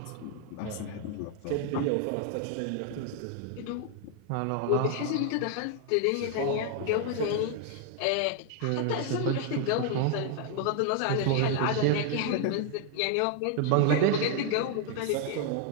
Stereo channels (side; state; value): both; different; correlation 0.00